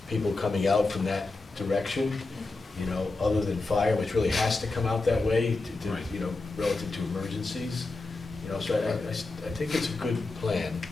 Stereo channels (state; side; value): quieter; right; 3.4 dB